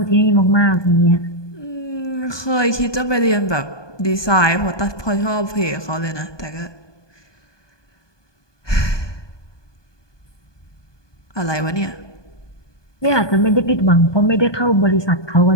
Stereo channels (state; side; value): late; right; 1.2 ms